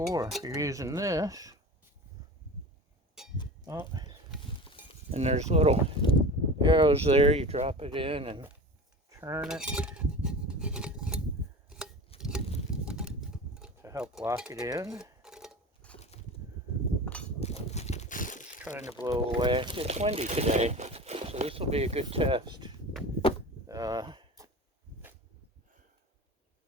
If you're using this, oh, and there's little arrows there. You drop it in and turn it to help lock it in. It's trying to blow away. It's windy today, so this will be a good test. I'm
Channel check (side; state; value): both; normal; correlation 0.33